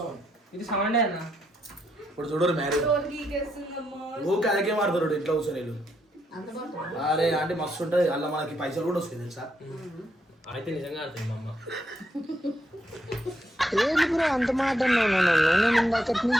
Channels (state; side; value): normal; both; correlation 0.78